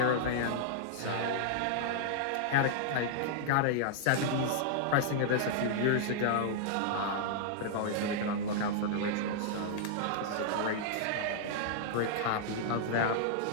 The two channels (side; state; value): both; different; correlation -0.01